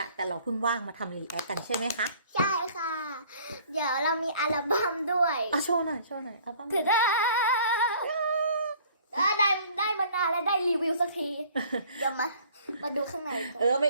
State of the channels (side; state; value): both; inverted; correlation -0.54